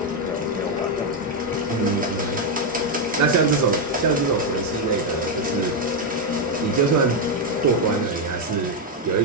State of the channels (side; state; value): both; normal; correlation 0.03